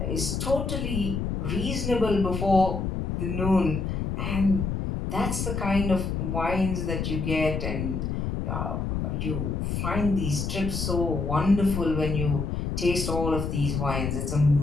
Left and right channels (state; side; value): noise; left; rumble, 2 dB below the sound